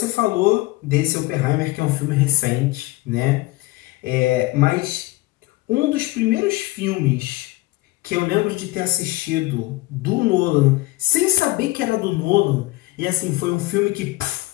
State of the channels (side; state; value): right; quieter; 19.8 dB